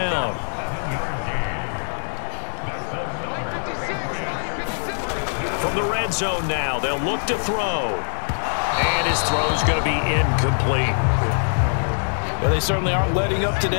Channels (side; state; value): right; silent; digital silence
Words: From the red zone now, they'll look to throw. And his throw's going to be incomplete. Well, they certainly aren't letting up